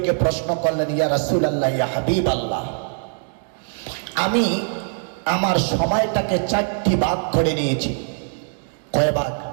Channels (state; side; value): silent; left; digital silence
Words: প্রশ্ন করলেন, ইয়া রাসূলুল্লাহ, ইয়া হাবিবাল্লাহ, আমি আমার সময়টাকে 4টি ভাগ করে নিয়েছি। কয় ভাগ?